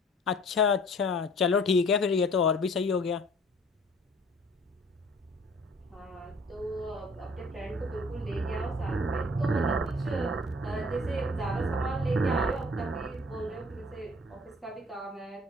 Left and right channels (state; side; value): normal; both; correlation 0.51